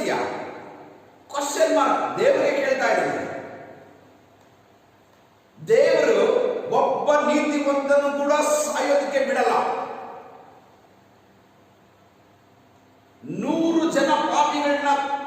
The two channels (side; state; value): both; identical; correlation 1.00